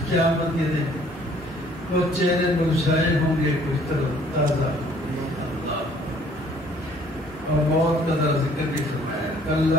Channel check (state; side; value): normal; both; correlation 0.58